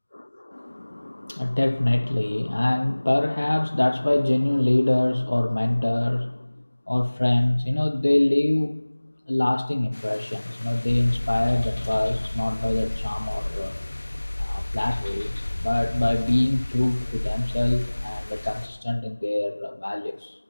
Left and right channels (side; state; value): both; inverted; correlation -1.00